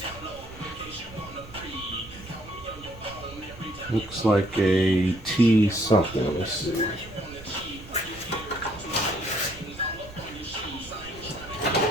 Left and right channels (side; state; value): right; noise; rumble, 19 dB below the sound